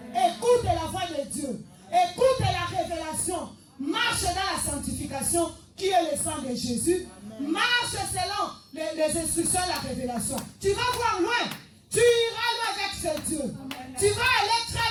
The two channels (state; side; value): identical; both; correlation 1.00